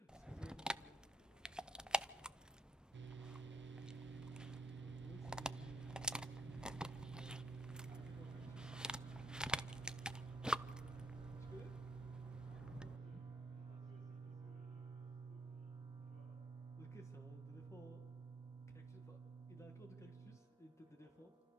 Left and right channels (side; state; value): both; normal; correlation 0.74